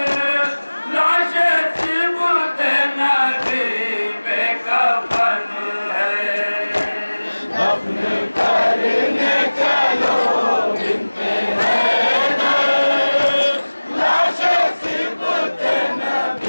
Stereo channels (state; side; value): inverted; both; correlation -1.00